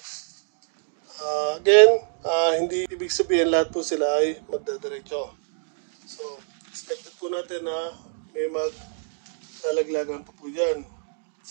again, hindi ibig sabihin lahat po sila ay magdadiretso. So expected po natin na may maglalaglagan pa po dyan.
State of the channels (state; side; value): silent; left; digital silence